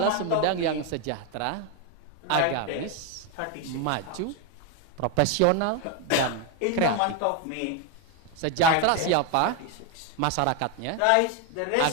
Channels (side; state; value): both; different; correlation 0.02